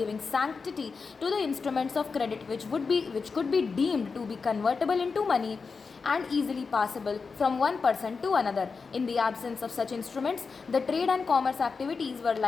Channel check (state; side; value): quieter; right; 4.9 dB